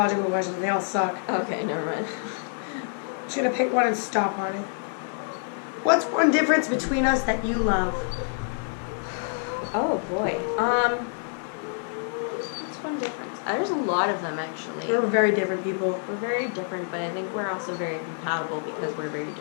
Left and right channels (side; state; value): right; silent; 60 dB below the other